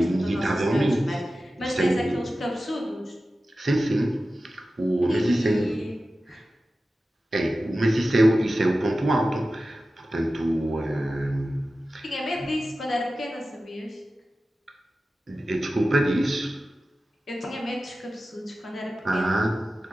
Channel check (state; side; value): normal; both; correlation 0.94